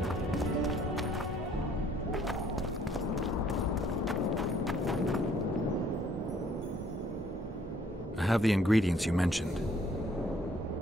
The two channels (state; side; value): normal; both; correlation 0.62